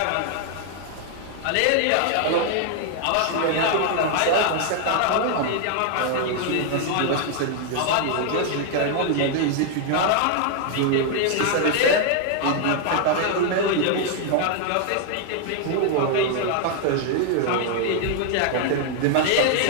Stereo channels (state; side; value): different; both; correlation 0.00